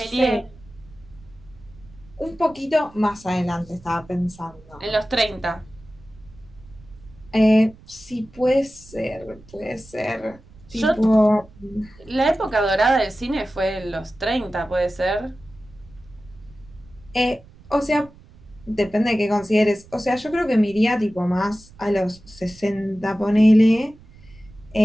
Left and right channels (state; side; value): noise; right; rumble, 23 dB below the sound